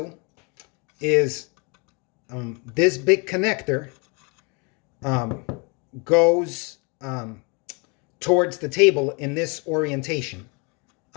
is this big connector goes towards the table in this orientation,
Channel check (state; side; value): quieter; right; 32.0 dB